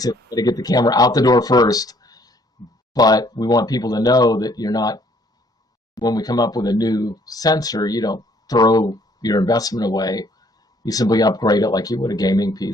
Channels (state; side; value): normal; both; correlation 0.63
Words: to get the camera out the door first, but we want people to know that you're not, when we come up with a new sensor, you don't throw your investment away. You simply upgrade it like you would a gaming